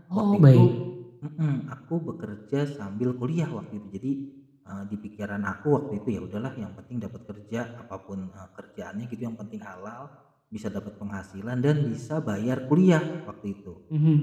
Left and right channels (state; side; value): identical; both; correlation 1.00